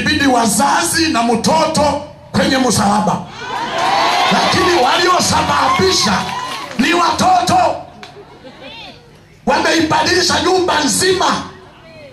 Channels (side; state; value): both; identical; correlation 1.00